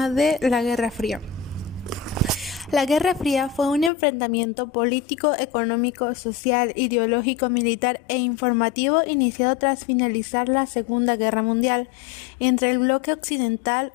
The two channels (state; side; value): drops out; right; at 3.9 s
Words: de la Guerra Fría. La Guerra Fría fue un enfrentamiento político, económico, social, ideológico, militar e informativo iniciado tras finalizar la Segunda Guerra Mundial entre el bloque